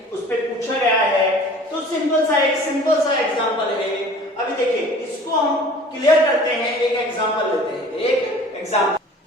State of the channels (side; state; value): both; normal; correlation 0.46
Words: उस पे पूछा गया है। तो सिंपल सा एग्जांपल है। अभी देखिए इसको हम क्लियर करते हैं, एक एग्जांपल लेते हैं, एक एग्जांपल